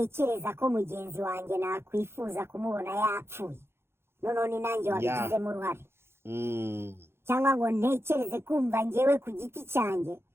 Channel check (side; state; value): left; late; 0.12 ms